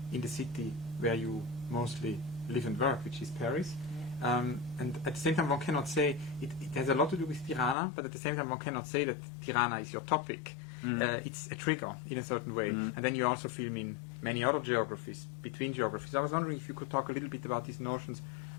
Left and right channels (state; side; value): drops out; right; at 7.8 s